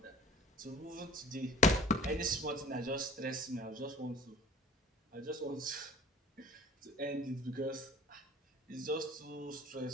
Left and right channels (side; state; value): both; normal; correlation 0.43